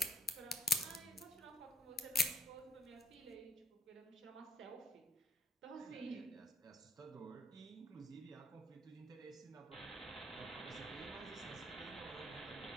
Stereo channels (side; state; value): both; normal; correlation 0.63